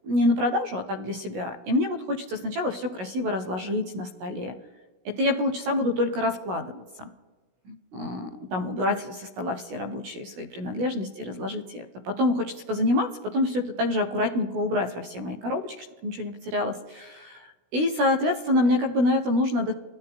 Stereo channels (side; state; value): left; late; 16 ms